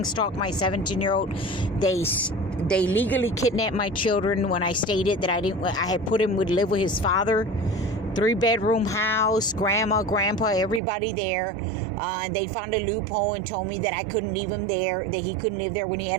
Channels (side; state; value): left; drops out; at 10.8 s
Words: stalked my 17-year-old. They legally kidnapped my children when I stated that I had put him would live with his father. 3-bedroom house, grandma, grandpa, everybody there. And they found a loophole and told me that I couldn't leave him there, that he couldn't live there when he